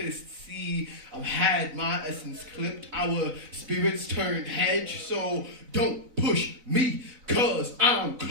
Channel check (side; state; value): left; late; 3.9 ms